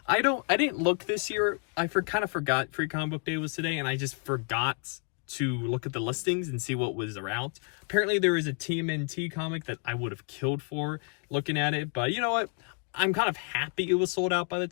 I didn't look this year. I kind of forgot Free Comic Book Day was today, and I just forgot to look at the listings and see what was around. Apparently there is a TMNT comic that I would have killed for looking at it, but you know what? I'm kind of happy it was sold out by the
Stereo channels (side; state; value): right; quieter; 36.1 dB